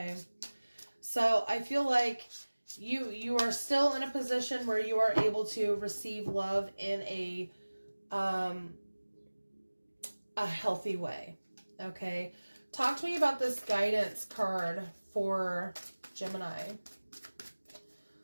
So I feel like you are still in a position where you are able to receive love in a healthy way, okay? Talk to me about this guidance card for Gemini.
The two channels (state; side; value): inverted; both; correlation -1.00